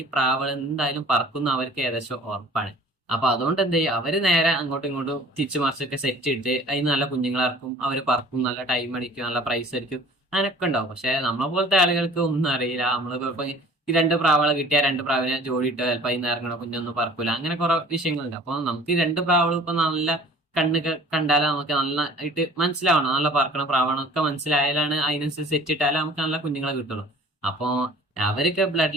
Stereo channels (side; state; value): both; normal; correlation 0.49